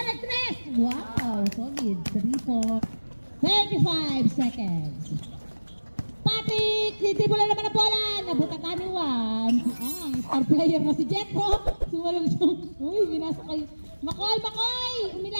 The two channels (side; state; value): both; inverted; correlation -1.00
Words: at 3. Wow, solid. 3 35 seconds. Patrick! Titibulan naman ang bola. Nabutakan ni Juan. Ang star player na si Jetro. Sumalong siya. Uy, pinasa kay Makoy! Makoy!